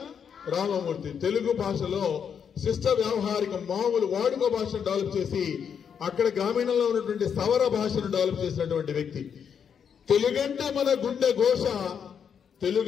రామమూర్తి. తెలుగు భాషలో శిష్ట వ్యవహారిక మామూలు వాడుక భాషను డెవలప్ చేసి అక్కడ గ్రామీణంలో ఉన్నటువంటి సవర భాషను డెవలప్ చేసినటువంటి వ్యక్తి. తెలుగంటే మన గుండె ఘోష,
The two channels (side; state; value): right; quieter; 7.5 dB